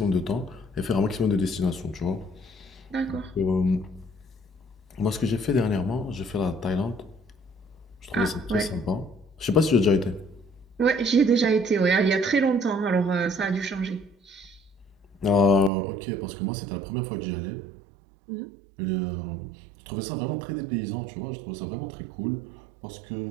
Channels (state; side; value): drops out; left; at 15.7 s